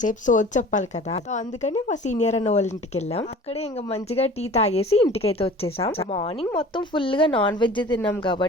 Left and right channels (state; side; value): normal; both; correlation 0.43